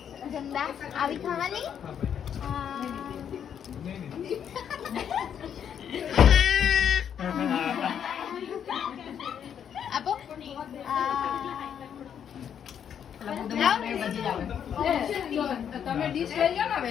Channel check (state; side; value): quieter; right; 8.5 dB